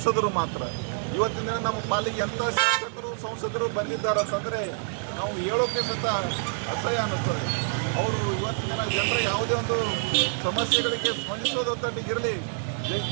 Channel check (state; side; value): silent; left; digital silence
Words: ಮಾತ್ರ. ಇವತ್ತಿನ ದಿನ ನಮ್ಮ ಪಾಲಿಗೆ ಎಂಥ ಶಾಸಕರು ಸಂಸದರು ಬಂದಿದ್ದಾರೆ ಅಂತಂದರೆ ನಾವು ಹೇಳೋಕ್ಕೆ ಸಹಿತ ಅಸಹ್ಯ ಅನ್ನಿಸ್ತದೆ. ಅವರು ಇವತ್ತಿನ ದಿನ ಜನರ ಯಾವುದೇ ಒಂದು ಸಮಸ್ಯೆಗಳಿಗೆ ಸ್ಪಂದಿಸೋದೊಂದಿಗಿರಲಿ,